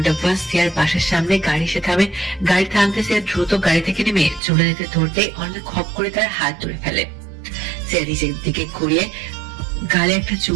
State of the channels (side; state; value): left; drops out; at 4.4 s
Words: পর সিয়ার বাসার সামনে গাড়ি এসে থামে। গাড়ি থামতে সিয়া দ্রুত গাড়ি থেকে নেমে চলে যেতে ধরতে অনিল খপ করে তার হাত ধরে ফেলে। সিয়া নিজের দিকে ঘুরিয়ে গালে একটা